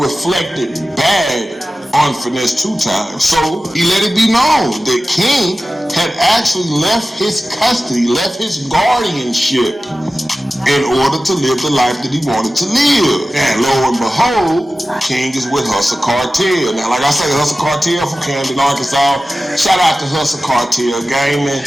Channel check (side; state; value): both; normal; correlation 0.95